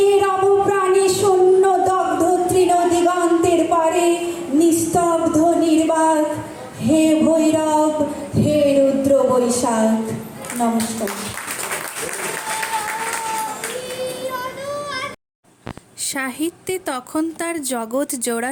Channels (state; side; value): identical; both; correlation 1.00